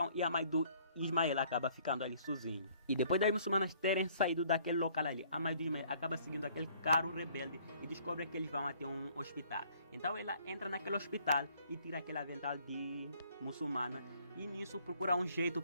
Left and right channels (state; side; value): inverted; both; correlation -0.60